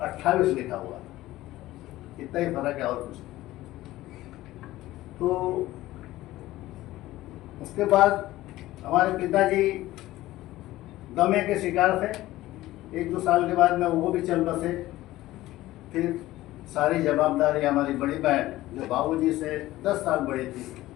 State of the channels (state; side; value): quieter; right; 16.4 dB